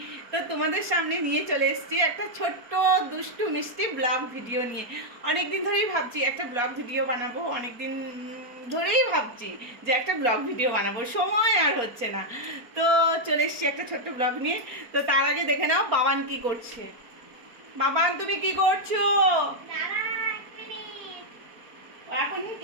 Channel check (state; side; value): late; left; 4.3 ms